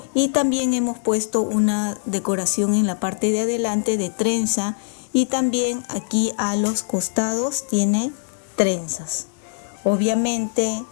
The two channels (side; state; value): right; silent; 59 dB below the other